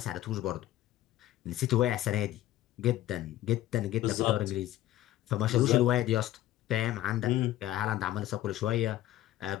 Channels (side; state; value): right; quieter; 14.2 dB